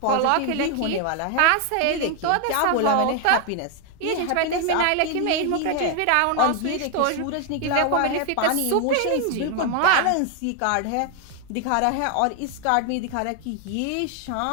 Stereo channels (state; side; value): different; both; correlation 0.00